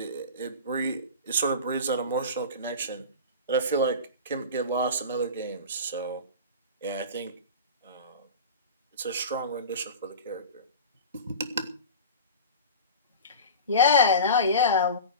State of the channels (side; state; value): both; inverted; correlation -0.31